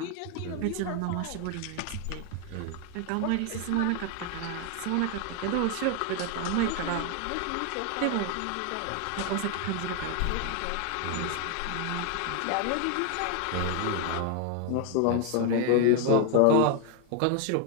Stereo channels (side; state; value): both; different; correlation 0.00